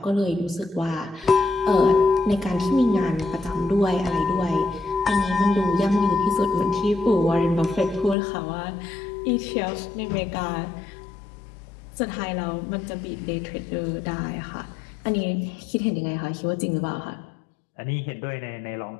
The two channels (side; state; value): right; drops out; at 8.2 s